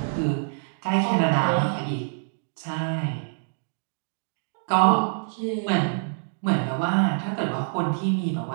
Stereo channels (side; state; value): left; silent; digital silence